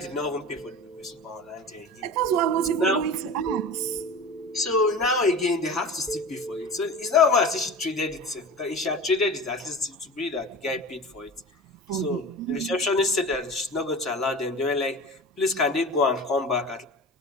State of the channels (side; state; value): both; normal; correlation 0.33